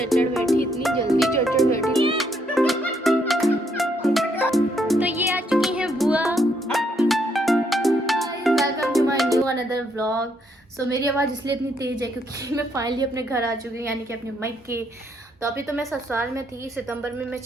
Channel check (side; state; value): both; normal; correlation 0.73